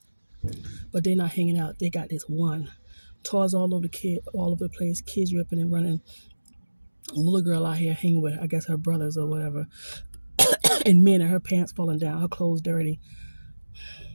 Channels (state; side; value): inverted; both; correlation -1.00